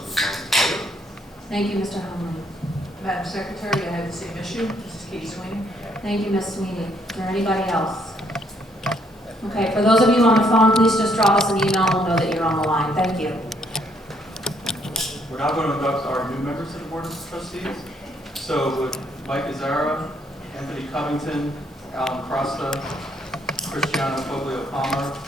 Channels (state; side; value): normal; both; correlation 0.69